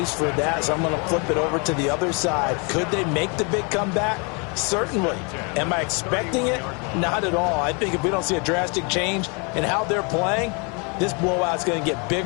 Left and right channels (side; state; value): right; quieter; 33.3 dB